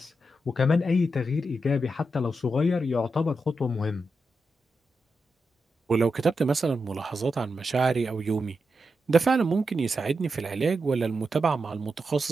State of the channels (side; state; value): both; normal; correlation 0.87